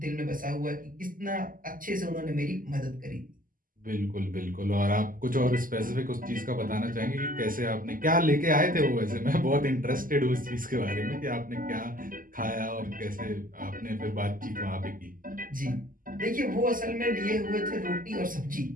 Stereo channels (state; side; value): late; left; 0.41 ms